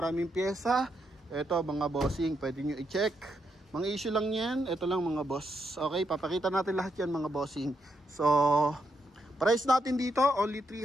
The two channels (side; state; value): both; normal; correlation 0.80